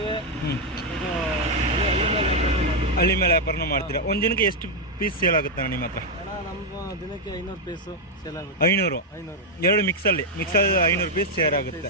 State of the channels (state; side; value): normal; both; correlation 0.01